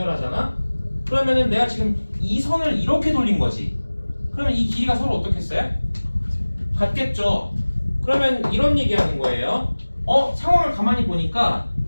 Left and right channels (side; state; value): both; inverted; correlation -1.00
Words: 그러면은 내가 지금 이 선을 이렇게 돌린 거지. 그러면 이 길이가 서로 어떻겠어요? 같겠죠. 그러면 이런 얘기하는 거예요. 상황을 가만히 보니까